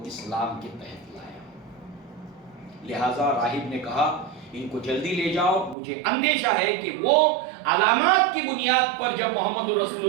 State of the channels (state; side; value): drops out; left; at 5.8 s